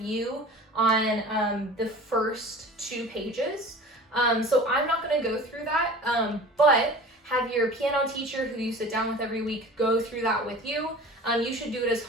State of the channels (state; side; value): normal; both; correlation 0.40